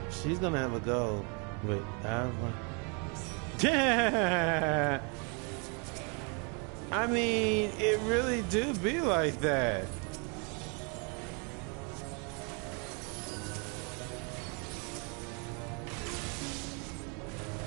she's gonna have a goal. Wait, yeah. I mean, it really do be like that.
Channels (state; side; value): quieter; left; 35.0 dB